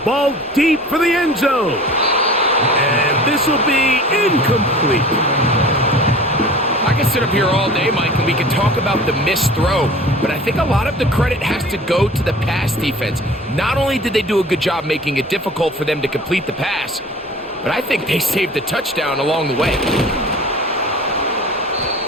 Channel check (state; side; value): normal; both; correlation 0.42